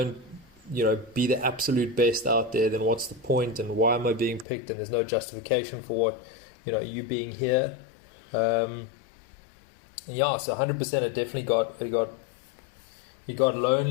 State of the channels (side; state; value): right; drops out; at 4.5 s